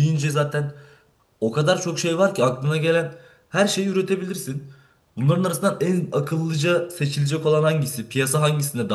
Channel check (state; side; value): identical; both; correlation 1.00